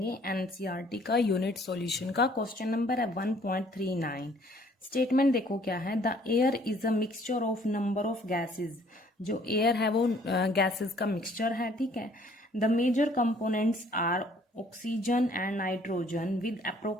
एनसीईआरटी का यूनिट सॉल्यूशन का। क्वेश्चन नंबर है 1.39। स्टेटमेंट देखो क्या है। The air is a mixture of number of gases. जो एयर है वो गैसेस का मिक्सचर है, ठीक है। The major components are oxygen and nitrogen with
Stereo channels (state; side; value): normal; both; correlation 0.59